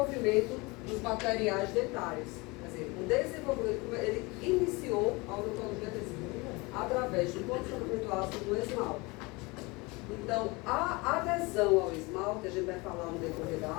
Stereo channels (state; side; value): quieter; right; 25.4 dB